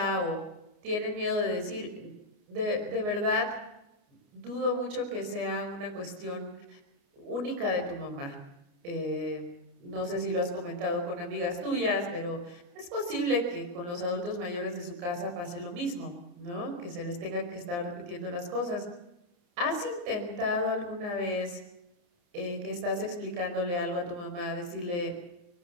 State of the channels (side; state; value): left; late; 29 ms